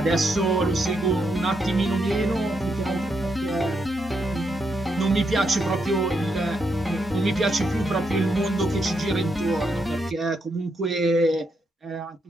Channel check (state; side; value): normal; both; correlation 0.80